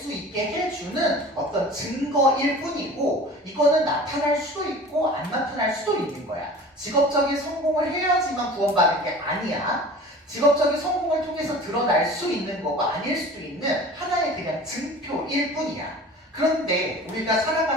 있게 해주는 어떤 증거일 뿐이고 이거는 나타날 수도 있고 안 나타날 수도 있는 거야. 직업적인 성공을 해야지만 구원받는 게 아니야. 직업적인 성공을 통해서 드러날 수 있는 거고 아닐 수도 있는 하나의 그냥 증표일 뿐이야. 그런데 우리가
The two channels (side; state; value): both; normal; correlation 0.41